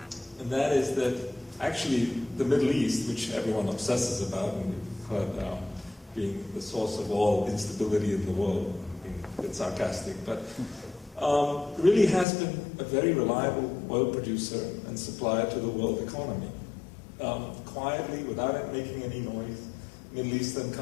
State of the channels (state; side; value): drops out; right; at 12.2 s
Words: and that is that actually the Middle East, which everyone obsesses about, and we've heard being the source of all instability in the world, being a bit sarcastic, but really has been a very reliable oil producer and supplier to the world economy. Quietly, without it making any noise, Middle Eastern